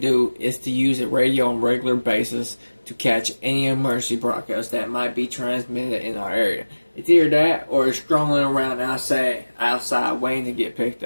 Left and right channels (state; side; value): inverted; both; correlation -1.00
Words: to do, is to use a radio on a regular basis to catch any emergency broadcasts that might be transmitted in our area. It's either that or it's strolling around outside waiting to get picked